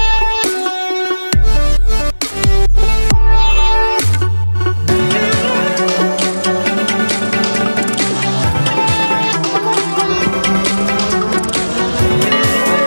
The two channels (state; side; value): inverted; both; correlation -1.00